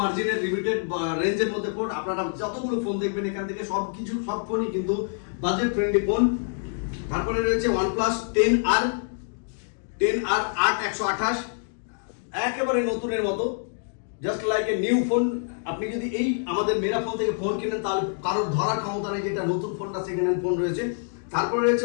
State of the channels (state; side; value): silent; right; digital silence